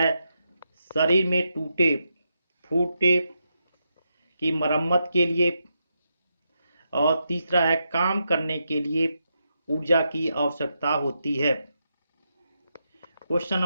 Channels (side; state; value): both; inverted; correlation -0.84